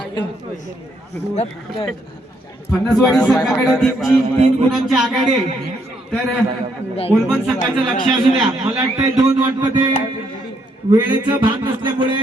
फणसवाडी संघाकडे 3 गुणांची आघाडी आहे. तर ओलवण संघाचं लक्ष असू द्या. मला वाटतंय 2 वाटतं ते वेळेचं भान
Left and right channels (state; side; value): normal; both; correlation 0.73